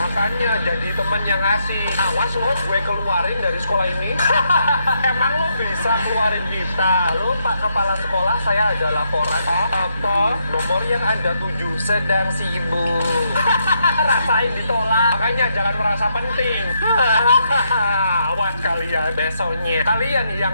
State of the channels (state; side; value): inverted; both; correlation -0.78